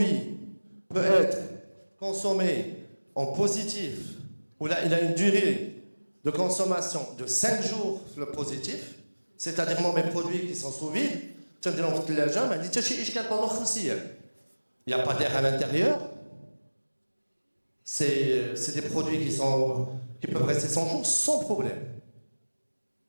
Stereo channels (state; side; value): inverted; both; correlation -1.00